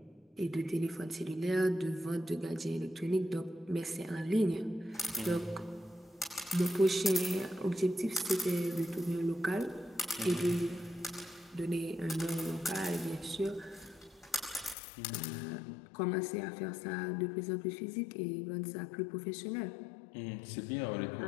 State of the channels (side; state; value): right; drops out; at 14.8 s